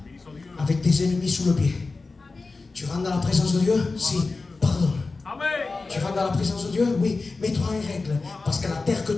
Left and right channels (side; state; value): right; quieter; 3.8 dB